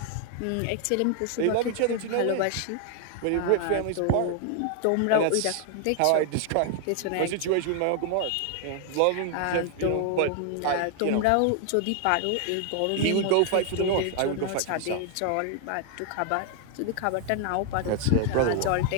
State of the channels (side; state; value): both; different; correlation 0.00